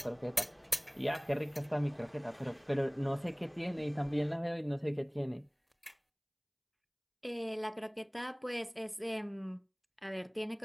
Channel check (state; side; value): identical; both; correlation 1.00